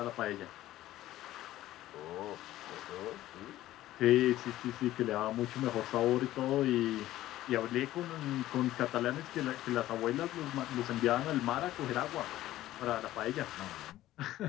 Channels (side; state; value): right; quieter; 14.7 dB